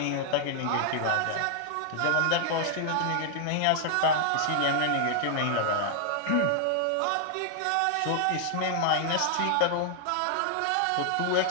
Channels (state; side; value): different; both; correlation 0.00